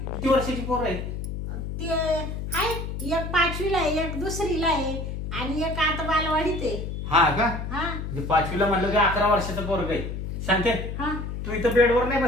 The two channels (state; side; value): noise; left; hum, 5 dB below the sound